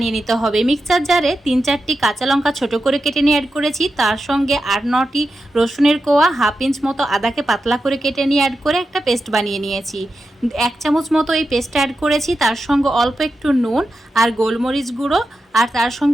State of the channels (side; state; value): both; normal; correlation 0.90